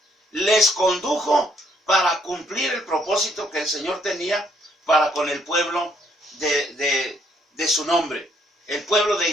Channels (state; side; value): normal; both; correlation 0.69